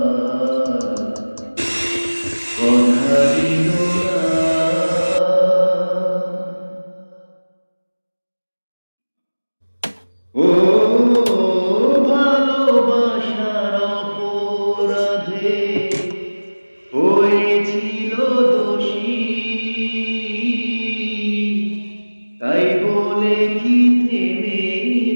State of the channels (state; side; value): inverted; both; correlation -1.00